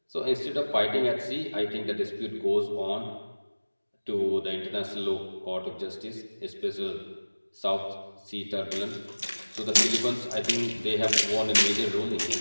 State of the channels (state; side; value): inverted; both; correlation -1.00